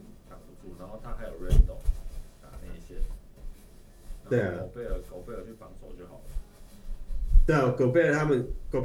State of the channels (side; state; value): both; identical; correlation 1.00